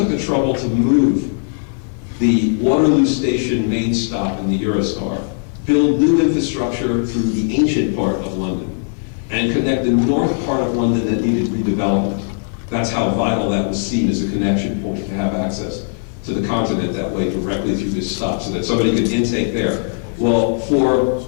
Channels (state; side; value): silent; right; 63 dB below the other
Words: the trouble to move the Waterloo Station main stop in the Eurostar, build new infrastructure through the ancient part of London, and connect the north part of London that needed redevelopment. That's how vital that was seen as a connection point, to have access to the continent that way directly through this stop, so that somebody could intake there. Well, for